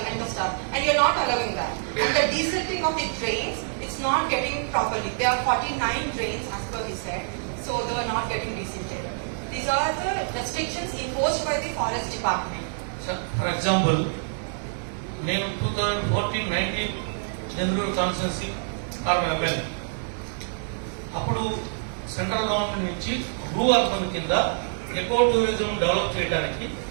and the stuff, and you're not allowing that. And the desilting of the drains, it's not getting properly. There are 49 drains as per he said, so they are not getting desilted. These are the restrictions imposed by the forest department. For example, నేను 2014-19 Denduluru constituency corporation అప్పుడు central government నుంచి blue urban కింద eco tourism develop చేయడానికి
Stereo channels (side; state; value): left; silent; digital silence